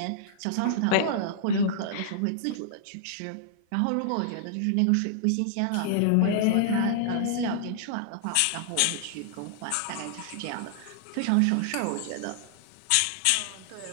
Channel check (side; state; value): both; different; correlation -0.01